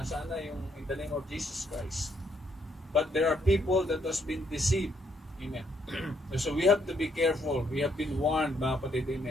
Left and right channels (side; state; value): both; normal; correlation 0.72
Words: na yung in the name of Jesus Christ. But there are people that has been deceived. Amen. So we have to be careful. We have been warned, mga kapatid,